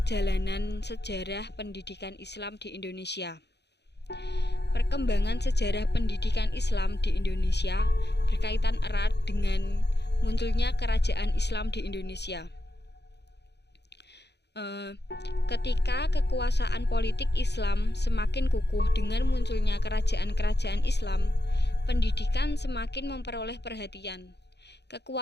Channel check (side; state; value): right; late; 0.49 ms